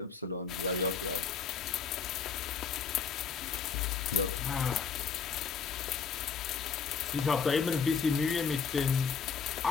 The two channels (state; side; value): quieter; right; 6.1 dB